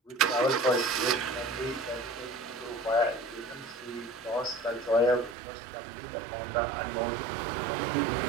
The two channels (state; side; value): drops out; left; at 5.4 s